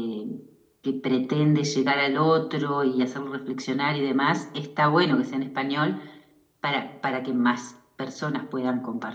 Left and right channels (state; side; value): identical; both; correlation 1.00